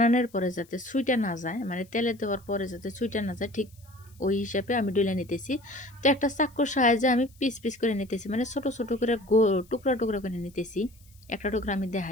পরে যাতে ছুইটা না যায়, মানে তেলে দেওয়ার পরে যাতে ছুইটা না যায়, ঠিক ওই হিসাবে আমি ডইলে নিতেছি। তো একটা চাকুর সাহায্যে আমি পিস পিস করে নিতেছি, মানে ছোট ছোট করে টুকরা টুকরা করে নিতেছি। একটা টুকরা আমি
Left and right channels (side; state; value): left; noise; hiss, 29 dB below the sound